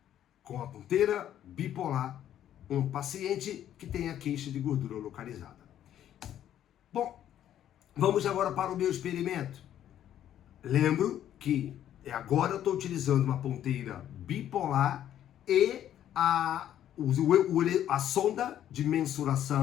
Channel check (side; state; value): right; quieter; 11.1 dB